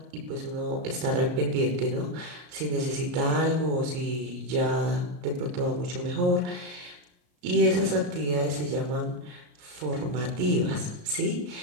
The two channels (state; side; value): late; left; 34 ms